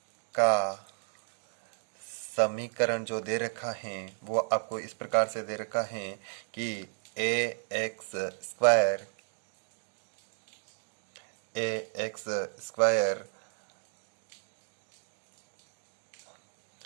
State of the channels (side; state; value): left; silent; 56 dB below the other